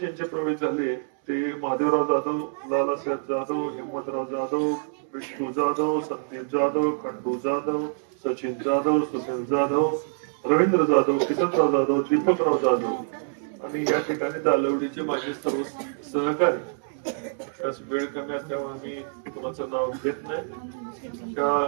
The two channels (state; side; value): silent; left; digital silence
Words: प्रवेश झाले ते महादेवराव जाधव, लालासाहेब जाधव, हिम्मतराव जाधव, विष्णू जाधव, संदीप जाधव, खंडू जाधव, सचिन जाधव, सुनील जाधव, रवींद्र जाधव, किसनराव जाधव, दीपकराव जाधव आणि या ठिकाणी दालवडीचे माझे सर्व सहकारी. वेळ कमी असल्यामुळे मी कोणाचं नाव घेत नाही.